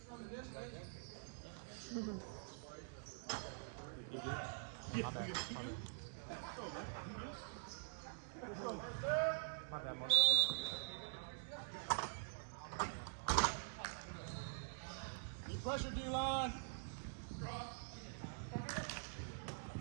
My bad. My bad, Mark. pressure, D-line.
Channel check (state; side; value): silent; left; digital silence